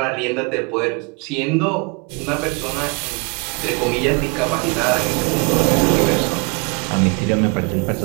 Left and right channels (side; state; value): left; quieter; 30.6 dB